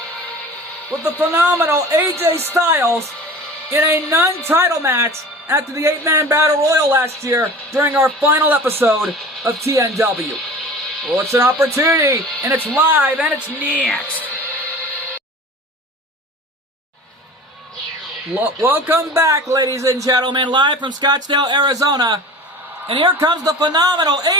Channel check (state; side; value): normal; both; correlation 0.38